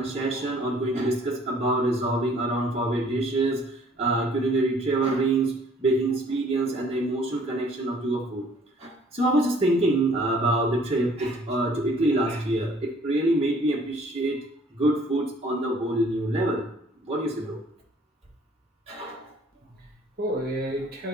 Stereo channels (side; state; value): both; normal; correlation 0.57